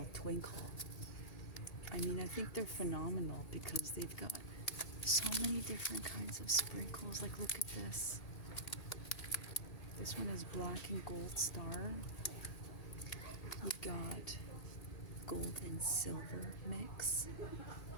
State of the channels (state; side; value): late; right; 1.8 ms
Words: Twinkle. I mean, I think they're phenomenal because they've got so many different kinds of sprinkles. Like, look at this. This one is black and gold star. We've got gold and silver mix.